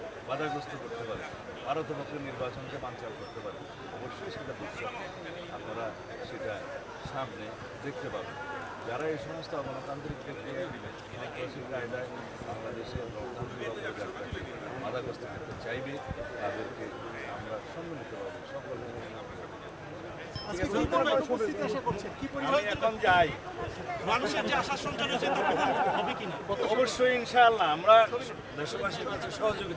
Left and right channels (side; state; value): both; identical; correlation 1.00